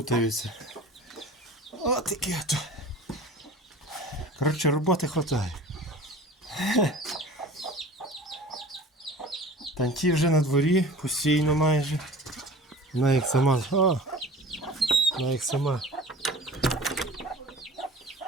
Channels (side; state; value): both; normal; correlation 0.41